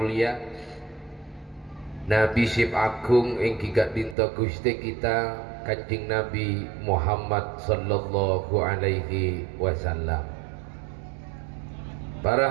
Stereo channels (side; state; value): left; drops out; at 4.2 s